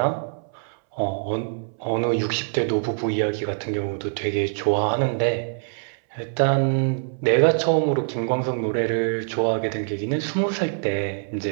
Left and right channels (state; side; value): silent; left; 63 dB below the other